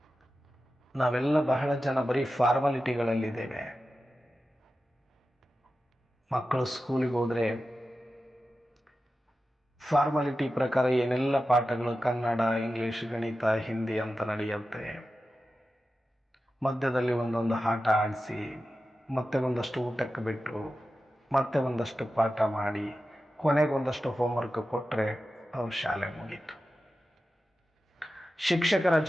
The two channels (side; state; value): both; normal; correlation 0.93